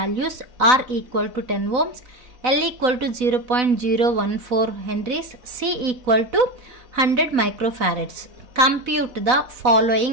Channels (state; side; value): late; left; 4.0 ms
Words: R equal to 10 ohms, L equal to 0.014 henries, C equal to 100 microfarads. Compute the